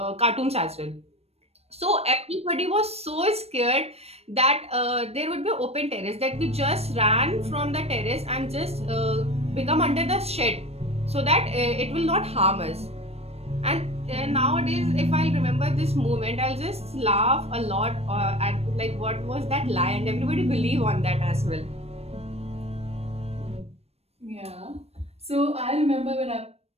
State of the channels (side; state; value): left; late; 0.30 ms